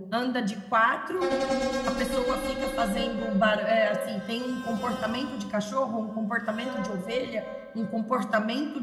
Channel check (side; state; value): both; identical; correlation 1.00